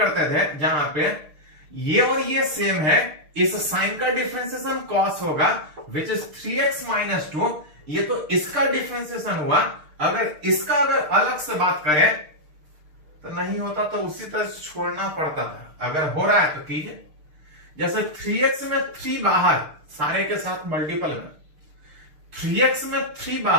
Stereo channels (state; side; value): late; left; 6.6 ms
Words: थे जहां पे ये और ये सेम है, इस साइन का डिफरेंशिएशन cos होगा विच इज 3x - 2। ये तो इसका डिफरेंशिएशन हुआ, अगर इसका अगर अलग से बात करें तो नहीं होता तो उसी तरह छोड़ना पड़ता था। अगर हो रहा है तो कीजिए, जैसे 3x में 3 बाहर, सारे के साथ मल्टीपल में 3x में 3